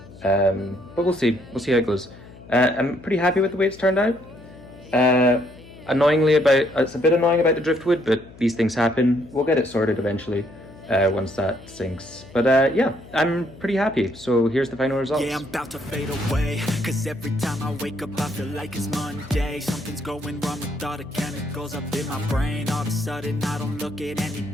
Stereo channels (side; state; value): left; noise; hum, 20 dB below the sound